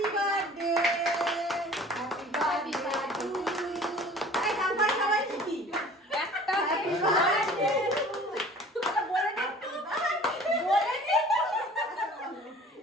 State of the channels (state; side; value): normal; both; correlation 0.47